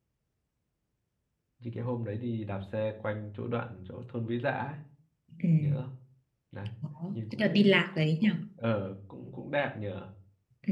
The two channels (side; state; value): both; identical; correlation 1.00